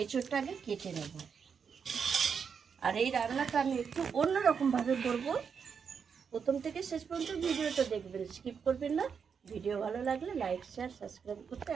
এঁচড়টা আগে কেটে নেব। আর এই রান্নাটা আমি একটু অন্যরকমভাবে করব। প্রথম থেকে শেষ পর্যন্ত ভিডিওটা দেখবেন, স্কিপ করবেন না। ভিডিও ভালো লাগলে লাইক, শেয়ার, সাবস্ক্রাইব করতে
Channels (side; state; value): left; quieter; 6.5 dB